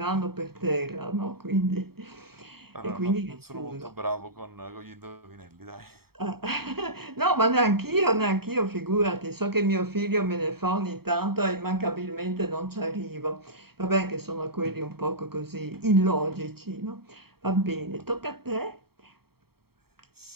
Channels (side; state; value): left; late; 0.95 ms